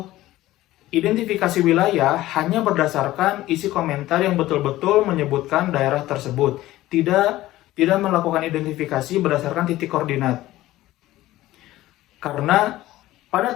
identifikasi wilayah hanya berdasarkan isi komentar yang betul-betul menyebutkan daerah tersebut, tidak melakukan identifikasi berdasarkan titik koordinat. Karena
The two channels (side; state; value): right; quieter; 16.0 dB